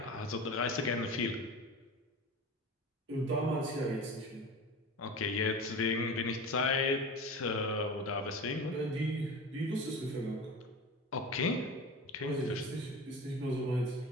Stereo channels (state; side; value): normal; both; correlation 0.31